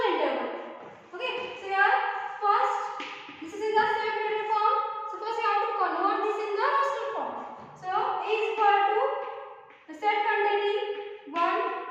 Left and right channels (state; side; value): identical; both; correlation 1.00